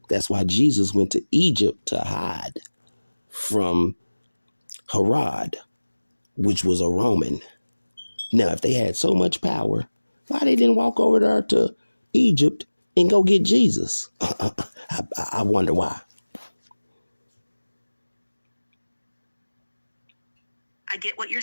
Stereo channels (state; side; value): inverted; both; correlation -1.00